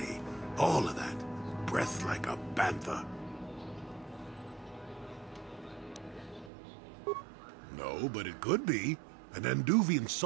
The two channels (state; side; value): drops out; left; at 6.5 s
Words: all of that. Breath like a bantha. No, but it could be. An Anduvian